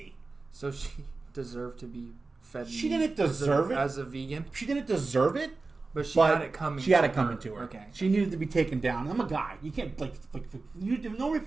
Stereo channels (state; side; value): quieter; left; 3.8 dB